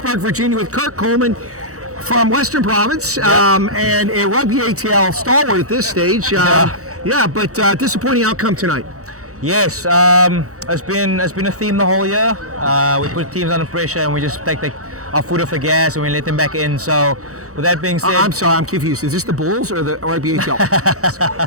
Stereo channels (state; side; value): late; left; 0.65 ms